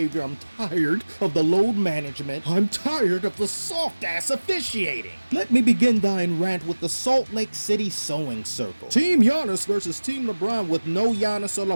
I'm tired of the load management. I'm tired of the soft-ass officiating. Let me begin thine rant with the Salt Lake City sewing circle. Team Giannis versus Team LeBron with no Giannis or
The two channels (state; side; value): inverted; both; correlation -1.00